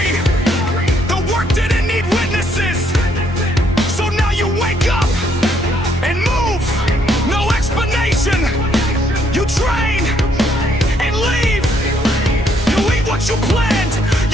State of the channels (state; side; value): normal; both; correlation 0.70